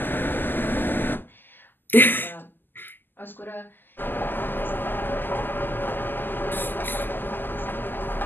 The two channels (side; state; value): right; late; 0.092 ms